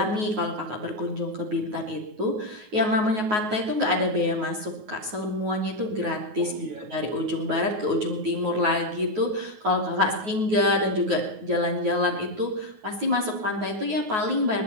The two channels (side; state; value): left; late; 9.4 ms